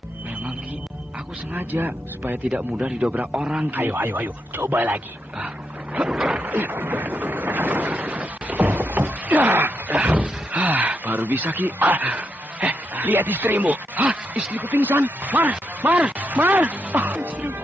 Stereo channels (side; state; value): both; normal; correlation 0.82